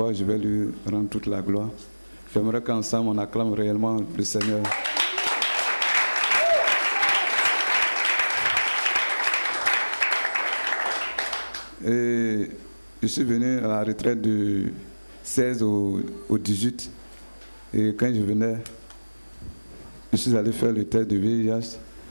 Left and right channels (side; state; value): both; inverted; correlation -1.00